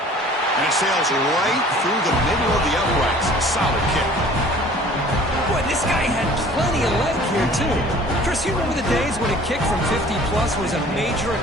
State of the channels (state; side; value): normal; both; correlation 0.49